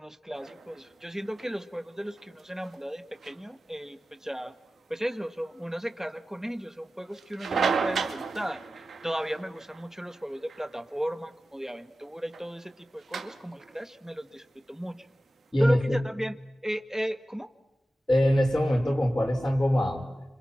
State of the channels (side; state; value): both; normal; correlation 0.95